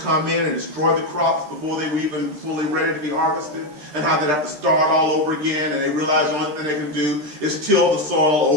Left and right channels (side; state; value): left; late; 13 ms